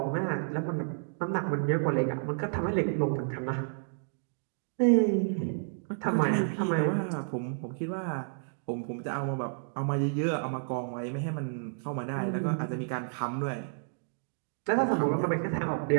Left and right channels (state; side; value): silent; left; digital silence